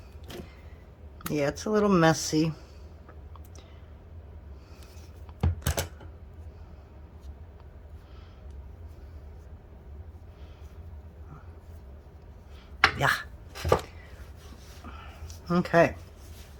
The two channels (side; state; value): both; identical; correlation 1.00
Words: yeah, it's a little messy. Yeah. Okay.